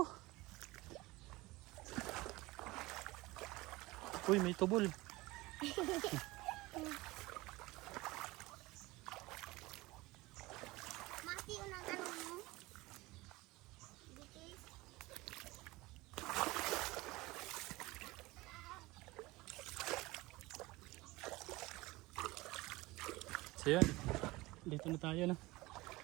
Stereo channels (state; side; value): quieter; left; 20.8 dB